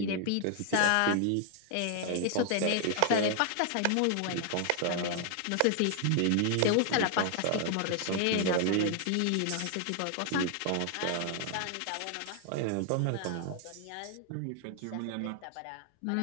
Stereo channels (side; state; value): both; different; correlation 0.00